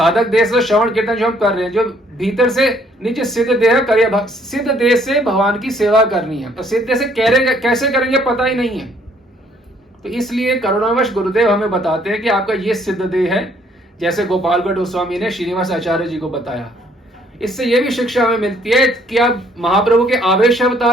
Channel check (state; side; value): normal; both; correlation 0.64